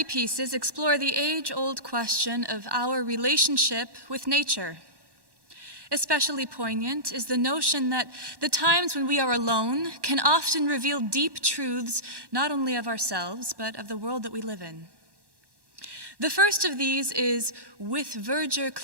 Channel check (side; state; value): left; late; 1.1 ms